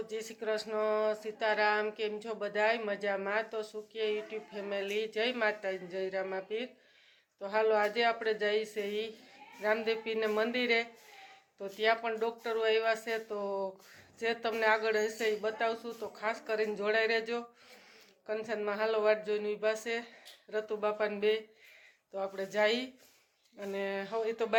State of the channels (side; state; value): both; identical; correlation 1.00